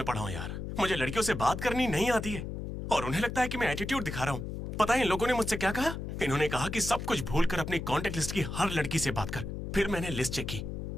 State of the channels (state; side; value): noise; left; hum, 6 dB below the sound